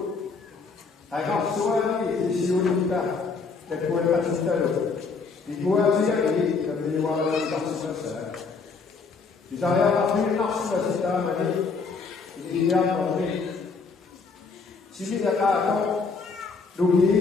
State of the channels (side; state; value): right; quieter; 4.7 dB